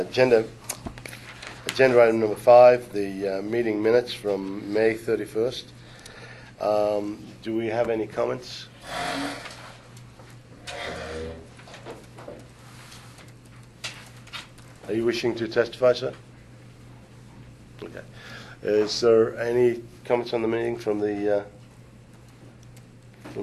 item number 5, the meeting minutes from May 31st. Do we have any comments? Are you wishing to testify, sir? Okay. Is there any comments on the meeting from the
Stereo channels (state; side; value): identical; both; correlation 1.00